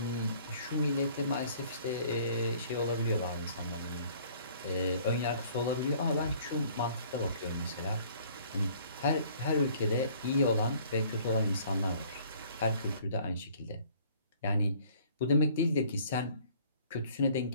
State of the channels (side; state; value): both; inverted; correlation -0.56